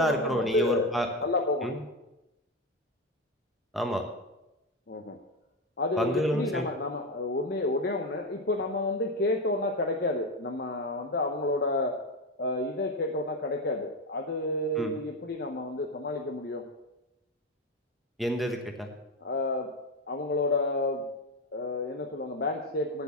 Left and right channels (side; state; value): both; normal; correlation 0.14